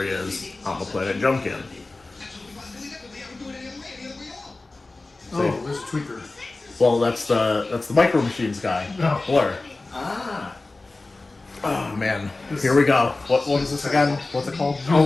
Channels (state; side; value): quieter; right; 3.2 dB